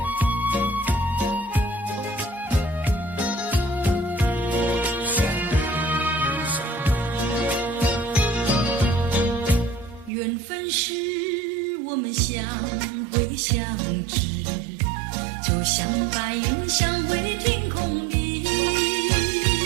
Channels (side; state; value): left; drops out; at 10.1 s